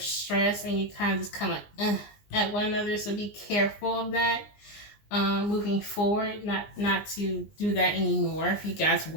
stress and you kind of just kind of like at one another. So be careful of that moving forward, not to do that anymore if you guys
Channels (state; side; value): late; right; 20 ms